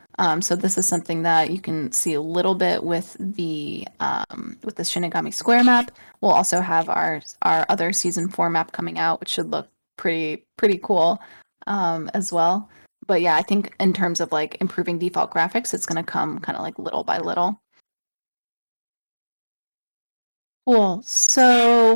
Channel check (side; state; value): both; inverted; correlation -1.00